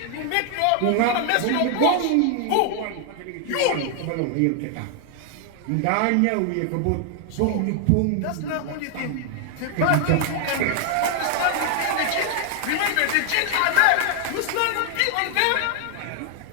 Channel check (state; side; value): different; both; correlation 0.00